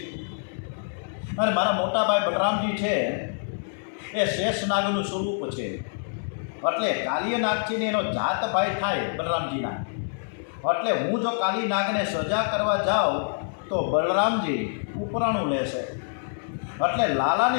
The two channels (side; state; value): right; silent; digital silence